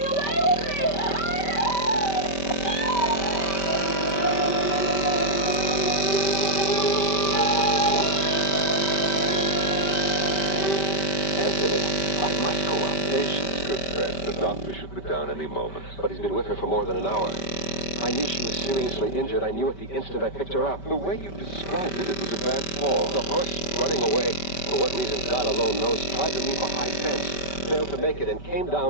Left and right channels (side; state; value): right; late; 5.2 ms